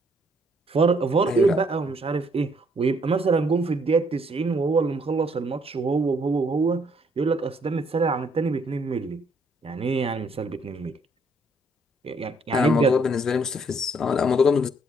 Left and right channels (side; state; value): both; normal; correlation 0.67